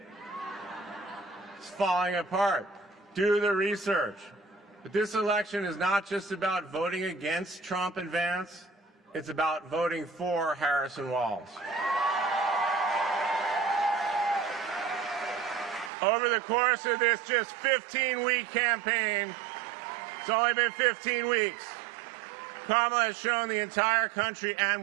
It's falling apart. Do the research. But this election is not just about voting against Trump and Vance. It's about voting for Harris and Walz. Over the course of this just 15-week campaign, it's only been 15 weeks, Kamala has shown the entire country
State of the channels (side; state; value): left; drops out; at 15.9 s